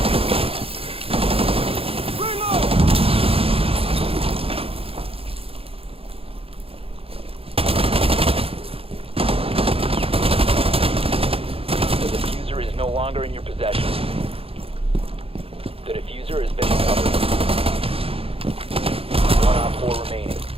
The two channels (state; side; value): late; left; 0.27 ms